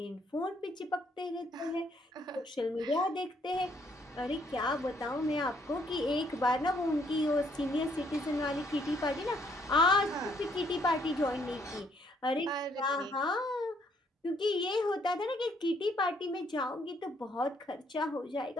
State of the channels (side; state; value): both; normal; correlation 0.68